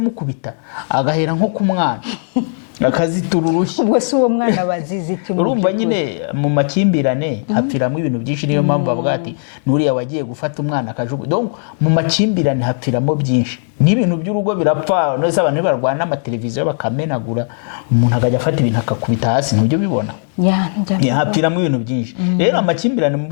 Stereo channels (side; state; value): right; silent; digital silence